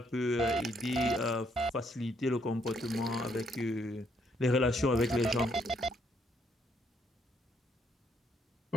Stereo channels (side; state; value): both; normal; correlation 0.71